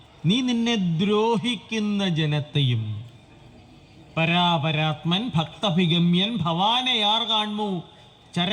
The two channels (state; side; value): identical; both; correlation 1.00